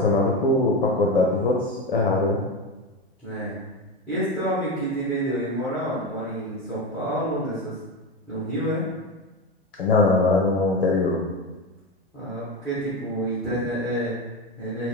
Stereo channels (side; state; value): both; normal; correlation 0.18